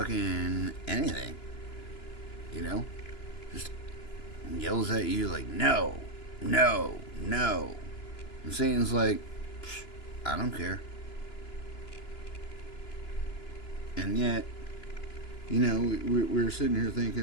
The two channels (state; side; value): late; right; 2.9 ms